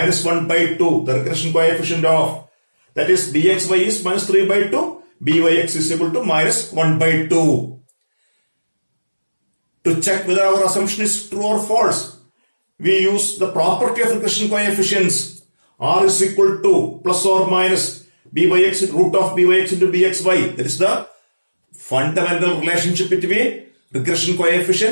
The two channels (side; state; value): both; inverted; correlation -1.00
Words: 1 by 2, the regression coefficient of, that is bxy is minus 3 by 2, byx is equal to minus 1 by 2. To check whether our assumption is true or false, we use the property of regression coefficients. R is equal to plus or minus byx root of byx into bxy. That is the fundamental relationship between regression